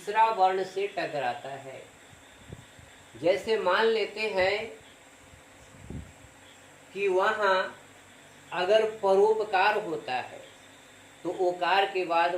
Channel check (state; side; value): identical; both; correlation 1.00